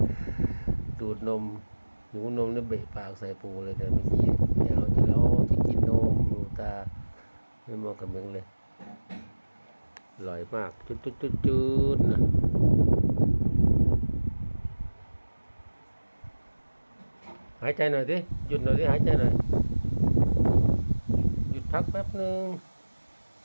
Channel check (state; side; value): inverted; both; correlation -1.00